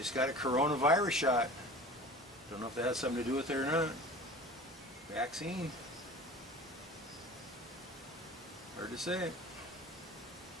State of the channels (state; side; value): normal; both; correlation 0.39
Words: got a coronavirus shot. Don't know if that has something to do with it or not. Vaccine. Hard to say.